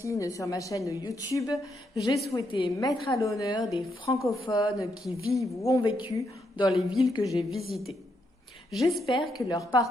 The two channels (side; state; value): both; normal; correlation 0.79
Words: sur ma chaîne YouTube, j'ai souhaité mettre à l'honneur des francophones qui vivent ou ont vécu dans les villes que j'ai visitées. J'espère que leurs